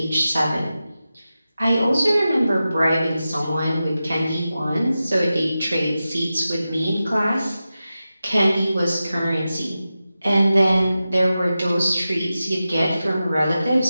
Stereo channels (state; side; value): inverted; both; correlation -0.93